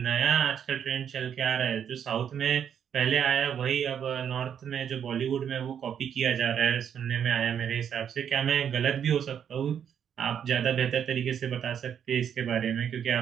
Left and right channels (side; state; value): left; quieter; 8.4 dB